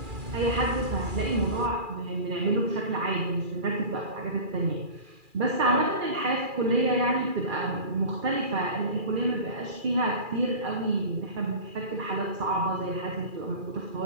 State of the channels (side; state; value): left; late; 2.4 ms